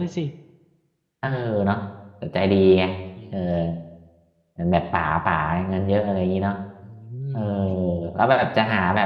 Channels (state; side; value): identical; both; correlation 1.00